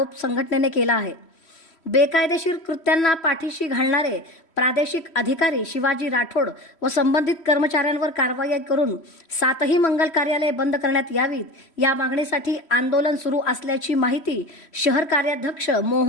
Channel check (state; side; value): late; right; 3.1 ms